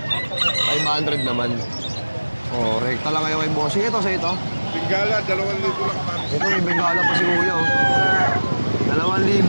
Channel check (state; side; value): inverted; both; correlation -1.00